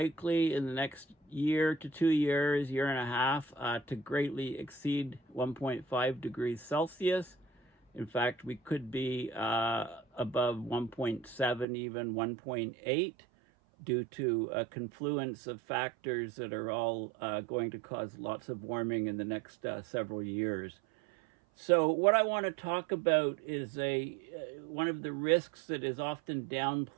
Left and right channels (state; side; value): drops out; left; at 11.7 s